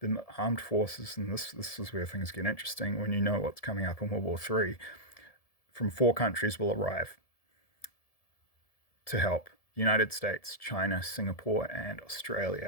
armed forces, and this is where things get interesting when you know what's coming up in World War III, from 4 countries will arrive to help. United States, China, Singapore, and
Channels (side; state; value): right; late; 1.7 ms